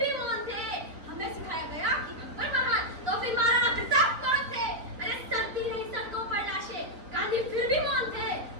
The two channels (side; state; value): left; late; 3.9 ms